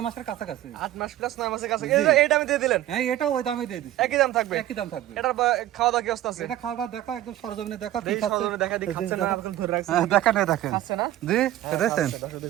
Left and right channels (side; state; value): left; quieter; 13.7 dB